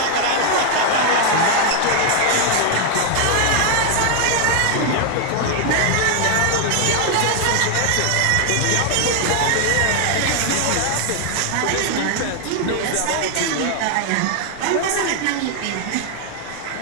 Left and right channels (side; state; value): both; different; correlation 0.00